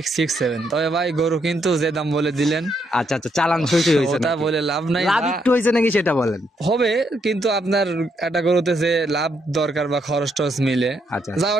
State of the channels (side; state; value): both; normal; correlation 0.76